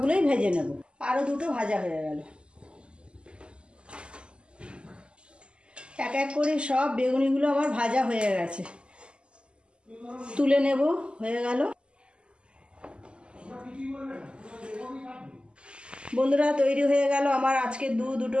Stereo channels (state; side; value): late; left; 0.051 ms